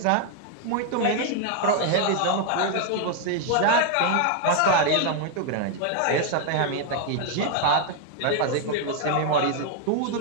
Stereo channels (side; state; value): both; different; correlation 0.00